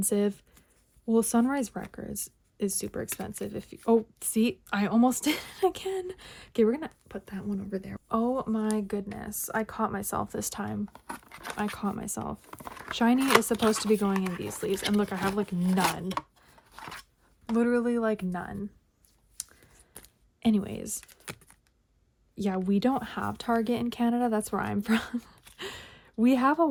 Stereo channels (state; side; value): identical; both; correlation 1.00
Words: Well, Sunrise Records is super expensive. Oh, see, I almost did it again. Okay, we're gonna put that one over there. Oh my goodness, I caught myself this time. I caught myself. Shiny is supposed to be going in these sleeves, and look, I have like none. Literally like none. Anyways, yeah, we don't have Target in Canada. That's where I'm from. We have a